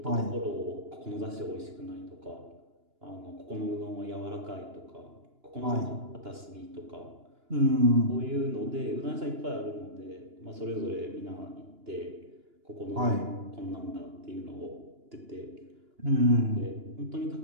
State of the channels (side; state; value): left; late; 2.9 ms